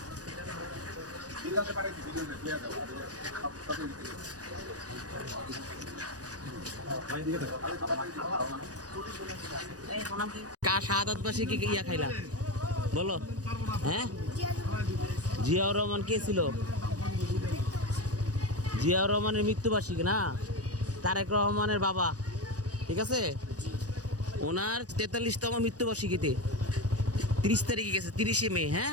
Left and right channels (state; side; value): late; left; 0.68 ms